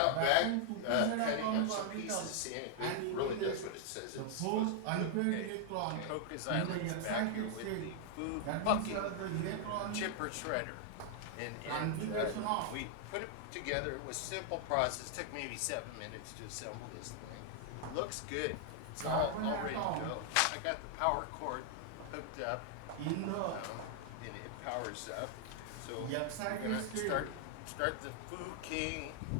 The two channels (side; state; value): both; different; correlation 0.00